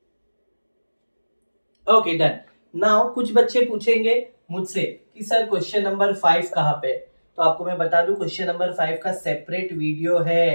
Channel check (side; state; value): both; inverted; correlation -1.00